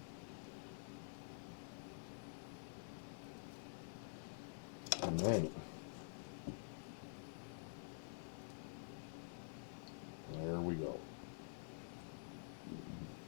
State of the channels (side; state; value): right; silent; digital silence